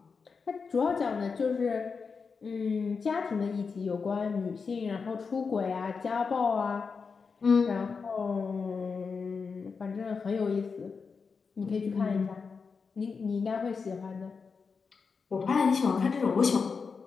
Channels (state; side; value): quieter; right; 5.2 dB